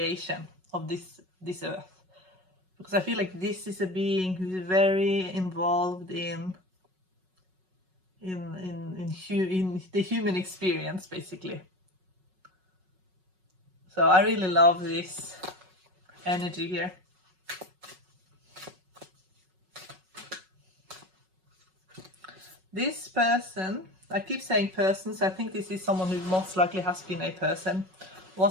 of this earth, because I feel like this is a being who's very involved in the human experience, basically. So I really love this energy here. This person, I keep saying person, so I think this is someone who most likely has been a person,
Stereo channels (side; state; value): left; late; 5.4 ms